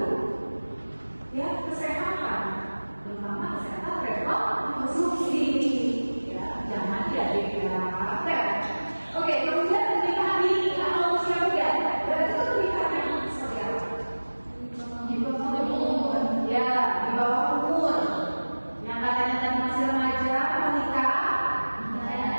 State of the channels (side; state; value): both; inverted; correlation -1.00